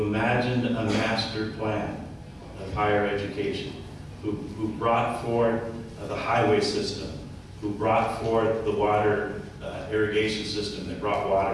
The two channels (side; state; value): both; identical; correlation 1.00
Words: imagined a master plan of higher education, who brought forth the highway system, who brought forth the water irrigation system that brought